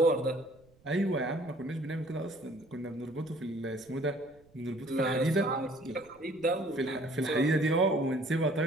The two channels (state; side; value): noise; right; rumble, 29 dB below the sound